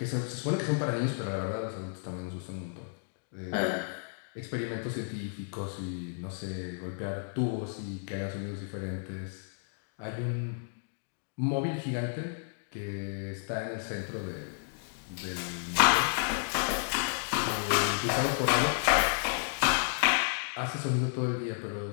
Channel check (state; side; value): silent; right; digital silence